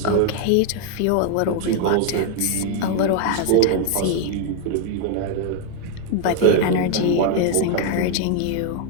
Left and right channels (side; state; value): both; different; correlation 0.01